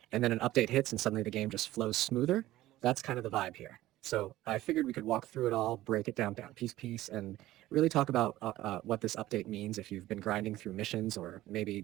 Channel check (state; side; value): quieter; left; 15.8 dB